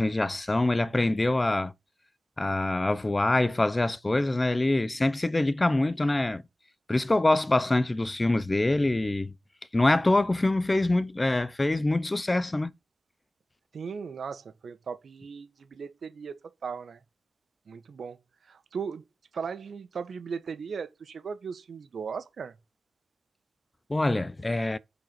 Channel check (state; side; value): normal; both; correlation 0.98